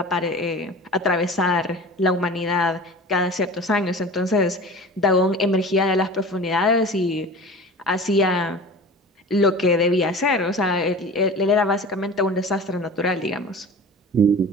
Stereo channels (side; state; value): both; normal; correlation 0.37